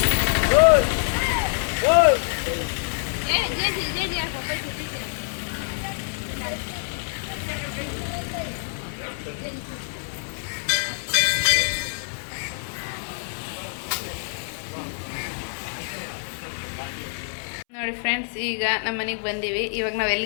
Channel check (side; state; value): right; silent; 61 dB below the other